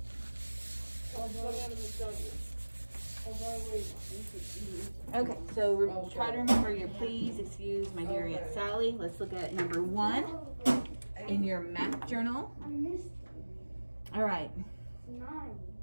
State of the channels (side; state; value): both; inverted; correlation -1.00